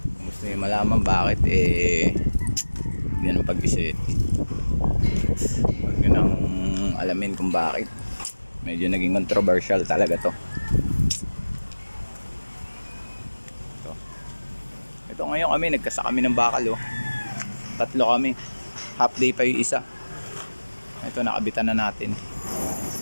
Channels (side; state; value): both; inverted; correlation -1.00